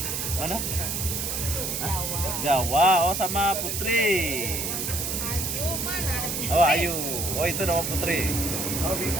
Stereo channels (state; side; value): noise; right; hiss, 2 dB below the sound